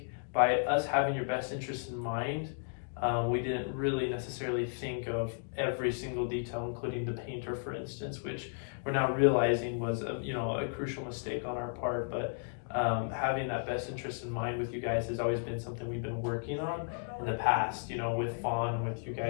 by us having your best interest in mind, we didn't really necessarily think of every single detail, including the painter, for instance, which we're now realizing was a crucial mistake on our part. But having that best interest in mind with you guys has always been something we've been working on in the past, with Fawn, with you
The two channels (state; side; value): silent; right; digital silence